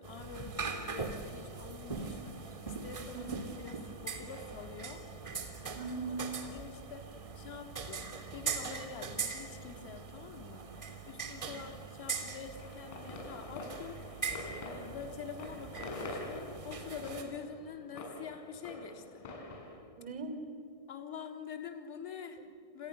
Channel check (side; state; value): right; late; 1.6 ms